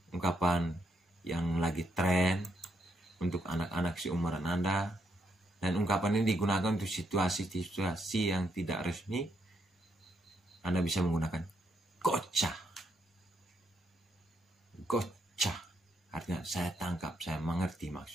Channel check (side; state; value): both; normal; correlation 0.77